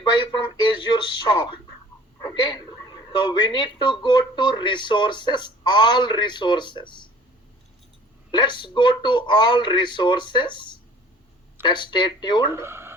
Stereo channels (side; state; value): both; normal; correlation 0.50